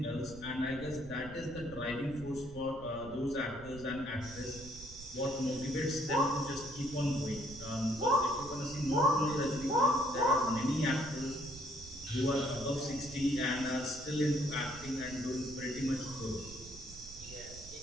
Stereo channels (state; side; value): noise; right; rumble, 16 dB below the sound